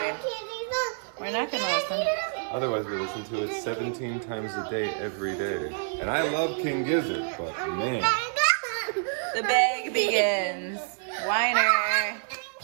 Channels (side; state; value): left; silent; 60 dB below the other